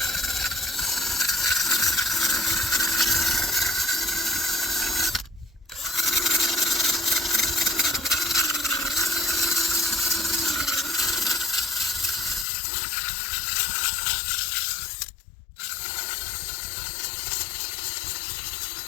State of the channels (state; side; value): drops out; right; at 12.5 s